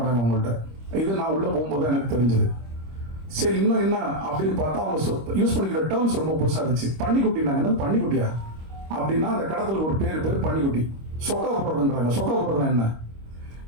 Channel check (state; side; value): late; left; 26 ms